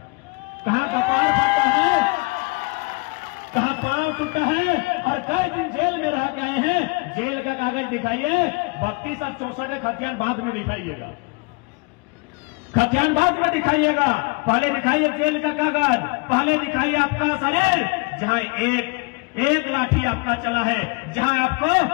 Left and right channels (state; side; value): quieter; right; 29.0 dB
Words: कहाँ कपाल फटा है, कहाँ पांव टूटा है और कई दिन जेल में रह गए हैं। जेल का कागज दिखाइए। 32 और 64 खतियान बाद में दिखाइएगा, खतियान बाद में दिखाइएगा। पहले दिखाइए जेल का कागज, पहले दिखाइए आपका शरीर जहां एक लाठी आपका चला है, जहां आपको